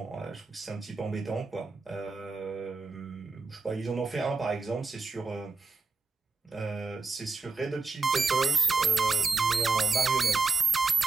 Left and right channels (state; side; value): quieter; left; 4.1 dB